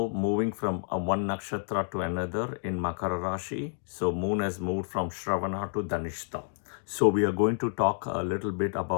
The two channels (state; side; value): silent; right; digital silence